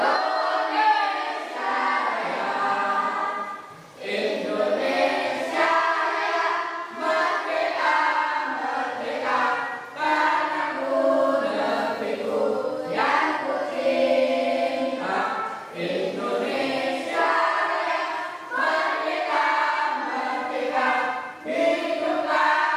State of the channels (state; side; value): identical; both; correlation 1.00